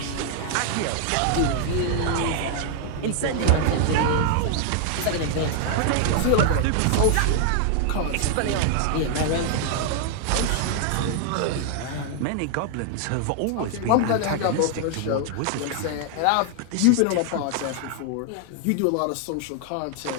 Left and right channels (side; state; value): both; different; correlation 0.00